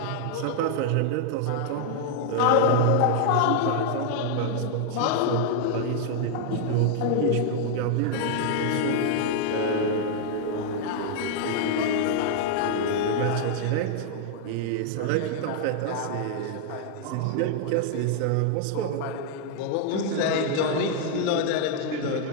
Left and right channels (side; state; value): both; different; correlation 0.00